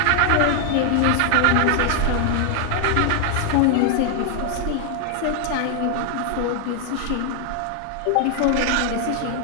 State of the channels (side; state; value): both; different; correlation 0.00